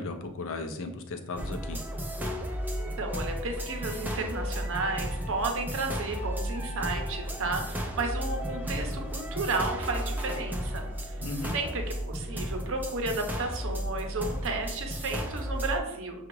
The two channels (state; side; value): normal; both; correlation 0.36